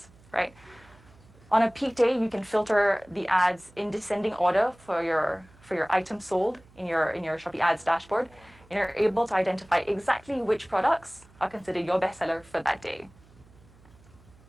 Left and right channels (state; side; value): noise; right; hum, 27 dB below the sound